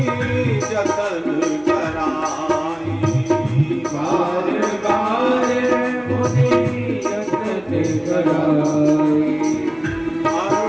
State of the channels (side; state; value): right; noise; hum, 30 dB below the sound